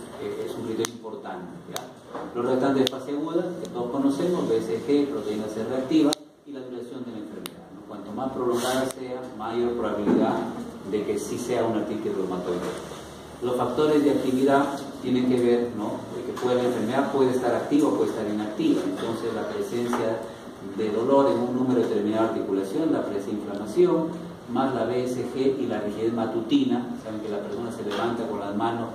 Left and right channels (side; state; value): both; identical; correlation 1.00